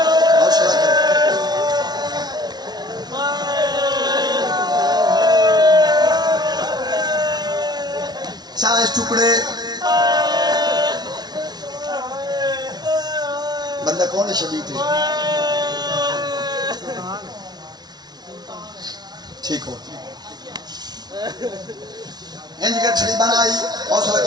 چاہے ٹکڑے بندہ کون شبیہ تھے ٹھیک ہو انج کے چھڑی بنائی حوصلہ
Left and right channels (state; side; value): late; left; 0.19 ms